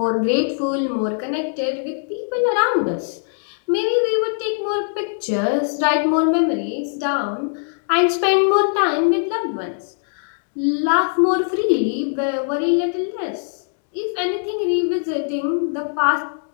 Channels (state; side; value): silent; right; digital silence